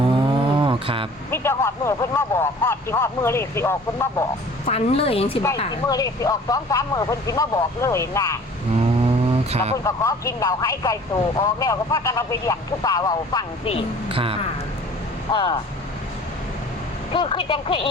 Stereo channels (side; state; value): both; normal; correlation 0.48